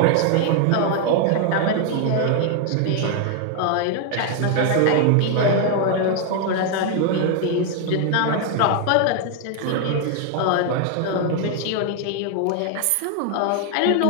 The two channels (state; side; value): different; both; correlation 0.00